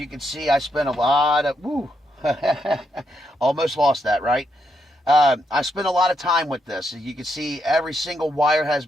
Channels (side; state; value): both; normal; correlation 0.79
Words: can see, I spent a lot of, almost lost that, right? I spent a lot of time with this. As you can see, every single wire has